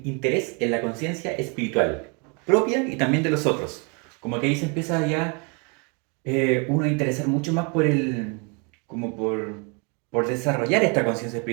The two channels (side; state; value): left; quieter; 33.5 dB